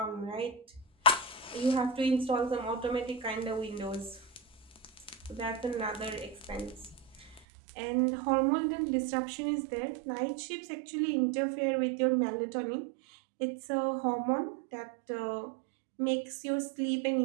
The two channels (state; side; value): drops out; left; at 7.4 s